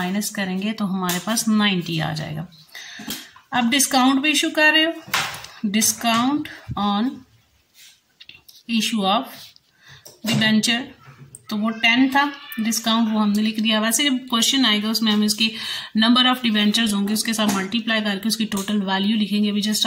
करेंगे तो हमारे पास 90 आ जाएगा। अब डिस्काउंट पे इशू कर रहे हो, discount on issue of debenture, तो वो 10 था डिस्काउंट, वो हमने लिख दिया। वैसे जब क्वेश्चन आएगा उसमें हम इसकी नंबर ऑफ डिबेंचर्स होंगे उसके साथ मल्टीप्लाई करके उसकी टोटल वैल्यू लिखेंगे। अभी जस्ट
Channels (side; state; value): both; identical; correlation 1.00